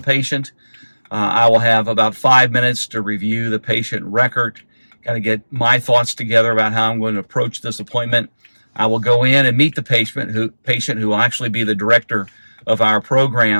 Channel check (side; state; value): both; inverted; correlation -1.00